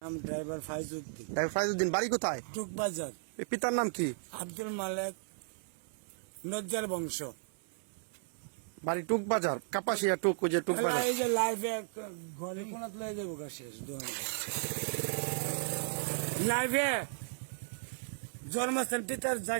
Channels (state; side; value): silent; left; 54 dB below the other